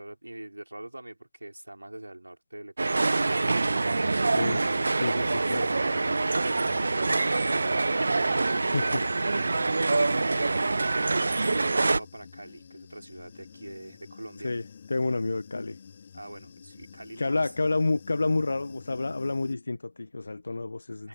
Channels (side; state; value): both; inverted; correlation -0.96